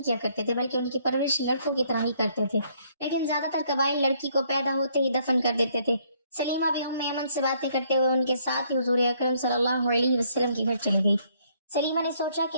کیا کرتے تھے، بلکہ ان کی پرورش لڑکوں کی طرح ہی کرتے تھے، لیکن زیادہ تر قبائل لڑکی کو پیدا ہوتے ہی دفن کر دیتے تھے۔ سلیمہ بھی ام ایمن سے باتیں کرتے ہوئے ان کے ساتھ ہی حضور اکرم صلی اللہ علیہ وسلم کے گھر چلی گئی۔ سلیمہ نے سوچا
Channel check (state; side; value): inverted; both; correlation -0.67